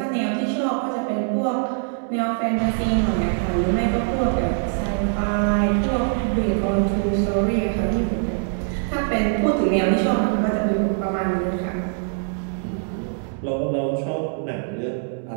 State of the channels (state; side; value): silent; left; 63 dB below the other